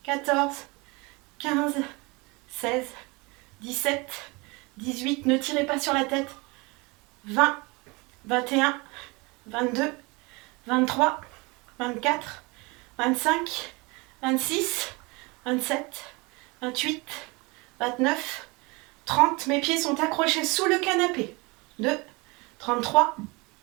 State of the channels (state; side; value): quieter; left; 26.3 dB